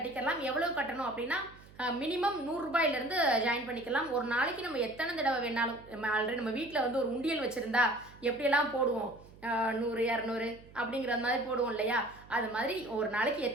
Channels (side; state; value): right; noise; hum, 22 dB below the sound